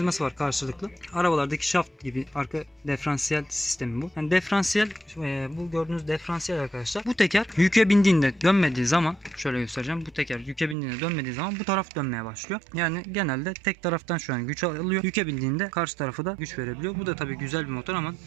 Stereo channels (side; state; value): left; drops out; at 10.8 s